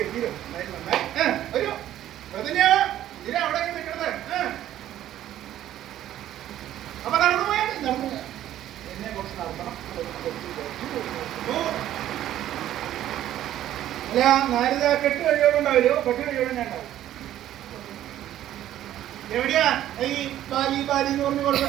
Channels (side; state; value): left; quieter; 12.4 dB